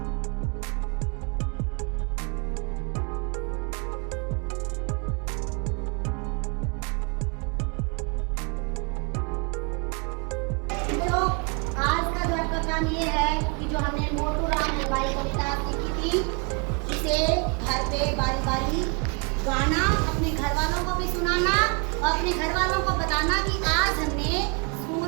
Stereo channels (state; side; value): quieter; left; 35.0 dB